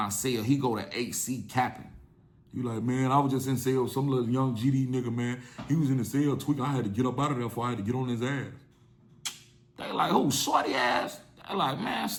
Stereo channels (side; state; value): both; identical; correlation 1.00